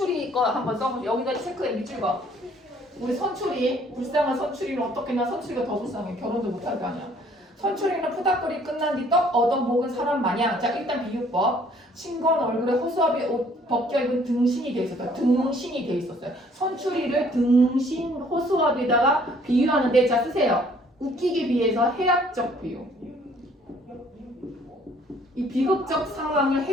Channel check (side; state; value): both; normal; correlation 0.60